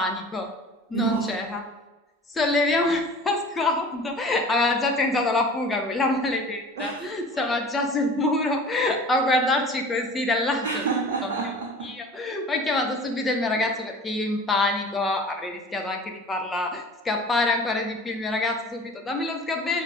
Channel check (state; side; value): normal; both; correlation 0.42